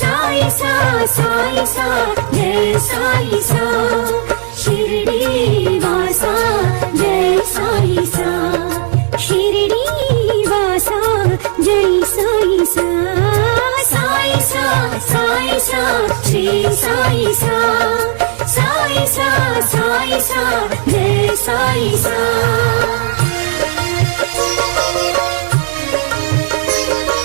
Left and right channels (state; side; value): silent; left; digital silence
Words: సాయి సా సాయి సా జై సాయి సా షిరిడి వాసా జై సాయి సా షిరిడి వాసా జై సాయి సా సాయి సా సాయి సా శ్రీ సాయి సా సాయి సా సాయి సా జై సాయి సా